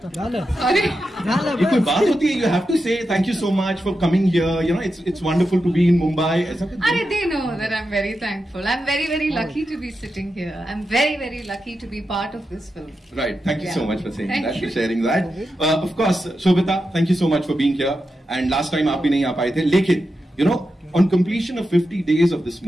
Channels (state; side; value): normal; both; correlation 0.89